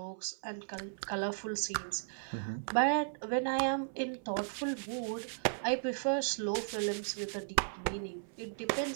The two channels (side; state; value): left; silent; 54 dB below the other